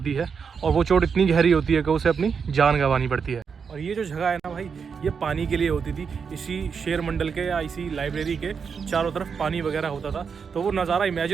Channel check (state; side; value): quieter; left; 6.1 dB